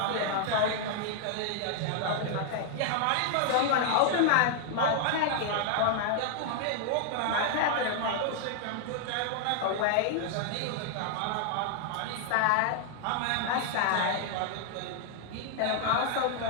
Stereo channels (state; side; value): different; both; correlation 0.00